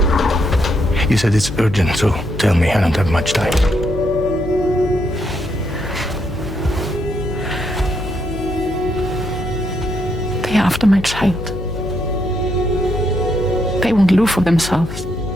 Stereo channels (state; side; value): noise; left; hum, 9 dB below the sound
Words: You said it's urgent, so tell me, I don't have much time. They're after my child. They want Lou for themselves.